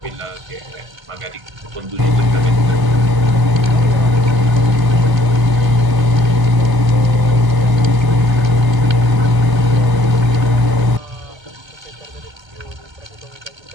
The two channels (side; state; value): left; late; 1.0 ms